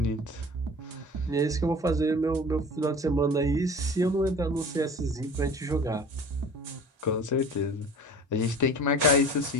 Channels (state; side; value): normal; both; correlation 0.41